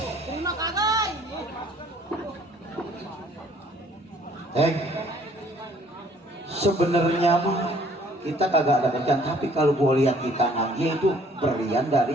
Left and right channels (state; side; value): normal; both; correlation 0.59